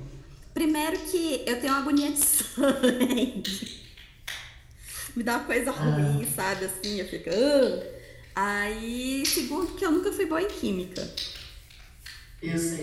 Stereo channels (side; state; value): both; identical; correlation 1.00